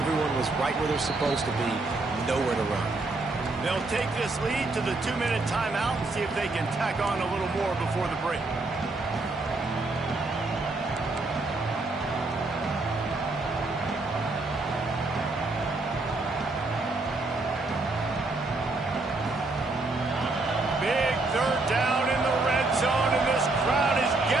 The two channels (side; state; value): left; quieter; 3.2 dB